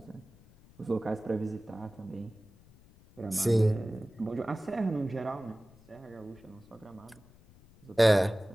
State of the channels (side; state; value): left; noise; rumble, 25 dB below the sound